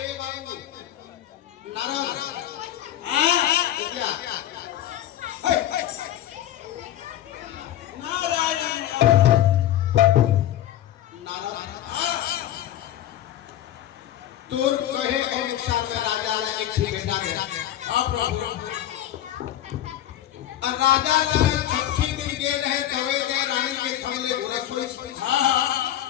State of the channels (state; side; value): quieter; right; 12.4 dB